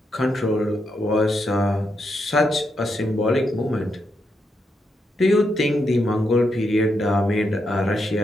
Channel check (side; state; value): both; normal; correlation 0.82